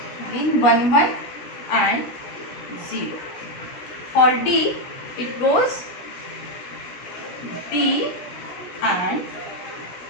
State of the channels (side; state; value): right; late; 16 ms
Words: again 1 1 and 0. For D, it goes B and